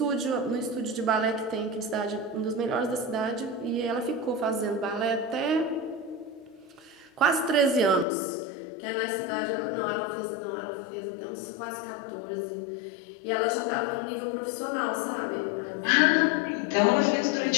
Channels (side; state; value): right; drops out; at 8.1 s